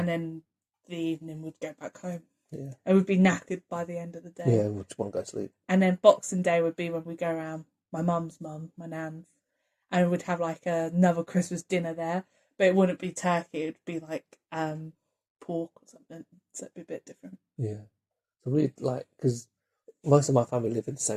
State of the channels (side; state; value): both; identical; correlation 1.00